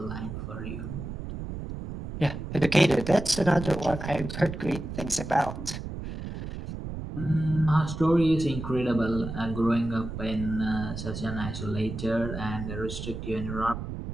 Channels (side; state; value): right; noise; rumble, 7 dB below the sound